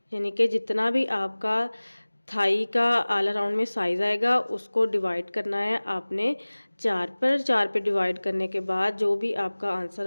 यानी कि जितना भी आपका थाई का ऑल अराउंड में साइज़ आएगा उसको डिवाइड करना है आपने 4 पर। 4 पे डिवाइड करने के बाद जो भी आपका आंसर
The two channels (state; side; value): inverted; both; correlation -1.00